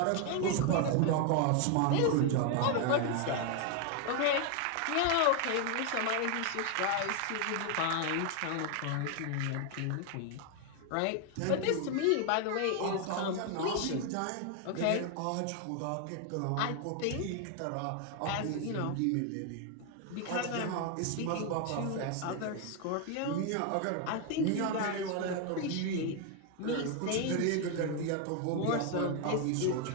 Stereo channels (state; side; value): different; both; correlation 0.01